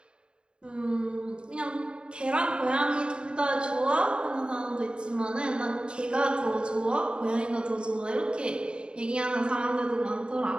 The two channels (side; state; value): left; late; 0.052 ms